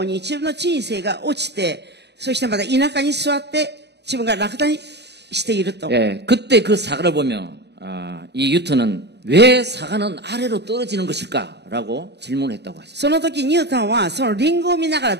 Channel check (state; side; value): late; left; 0.49 ms